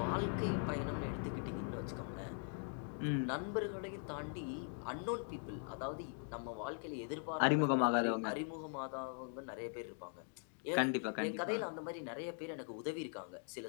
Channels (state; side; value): silent; right; 50 dB below the other